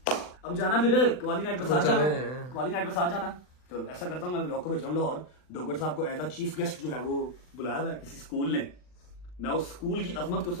अब जाना फिर कवाली नाइट पे साथ जाना, कवाली नाइट पे साथ जाना। चलो ऐसा करता हूँ, मैं व्लॉग को भेज रहा हूँ लाहौर। डोगर साहब को एज अ चीफ गेस्ट जो है वो बुलाया हुआ है किसी स्कूल ने। मैं उस स्कूल की अजमत को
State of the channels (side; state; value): right; late; 39 ms